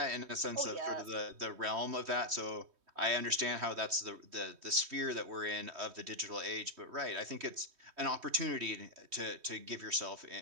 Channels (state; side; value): late; left; 3.1 ms